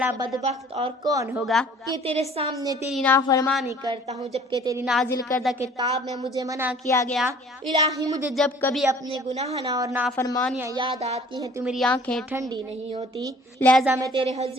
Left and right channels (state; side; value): normal; both; correlation 0.52